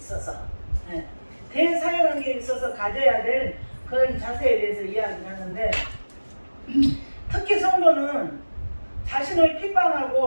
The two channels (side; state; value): both; inverted; correlation -1.00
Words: 가져야 될 그런 자세에 대해서 이야기를 하는데, 특히 성도는 자신을